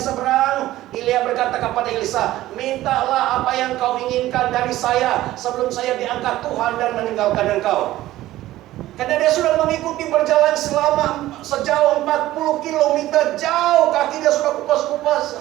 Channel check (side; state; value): left; quieter; 15.4 dB